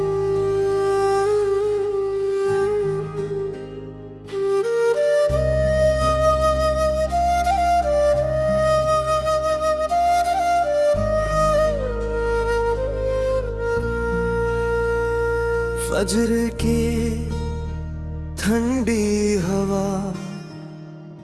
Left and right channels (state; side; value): identical; both; correlation 1.00